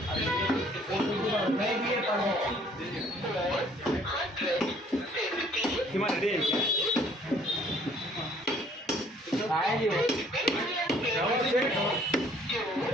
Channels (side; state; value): both; normal; correlation 0.59